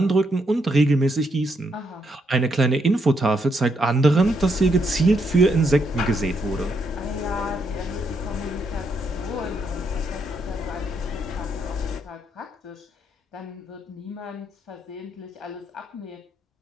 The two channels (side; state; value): both; normal; correlation 0.77